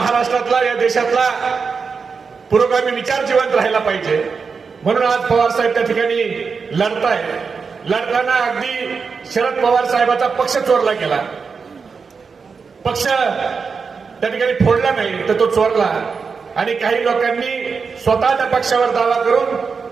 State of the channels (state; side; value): quieter; left; 5.3 dB